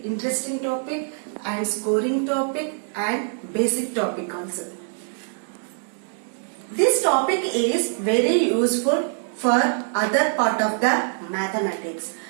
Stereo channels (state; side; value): silent; left; digital silence